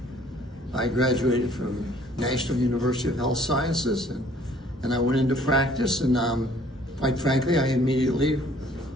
I graduated from National University of Health Sciences, and I went into practice, and quite frankly, I immediately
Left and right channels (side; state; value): both; normal; correlation 0.58